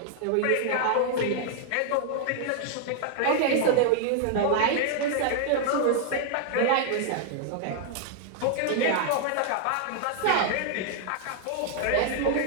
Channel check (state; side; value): different; both; correlation 0.00